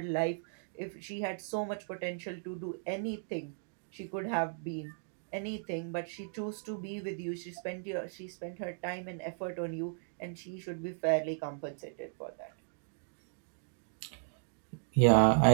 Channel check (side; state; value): left; silent; digital silence